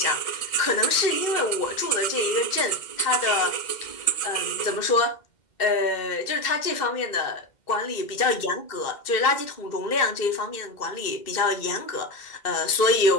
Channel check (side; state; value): right; late; 2.1 ms